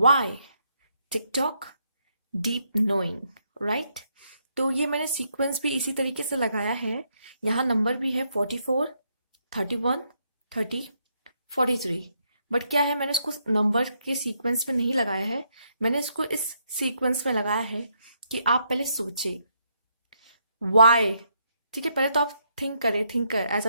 TikTok, deep knowing, right. तो ये मैंने सीक्वेंस भी इसी तरीके से लगाया है। यहाँ नंबर भी है 44, 31, 30, 43। बट क्या है, मैंने इसको नंबर के सीक्वेंस में नहीं लगाया है। मैंने इसको इस सीक्वेंस में लगाया है कि आप पहले सोचे वाई। ठीक है, पहले तो आप थिंक करें, थिंकर एज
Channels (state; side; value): inverted; both; correlation -0.76